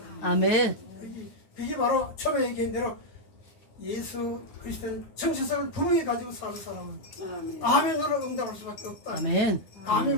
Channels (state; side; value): late; right; 9.5 ms